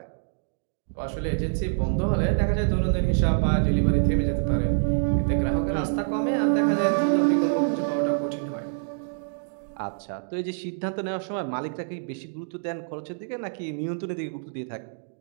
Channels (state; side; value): silent; left; digital silence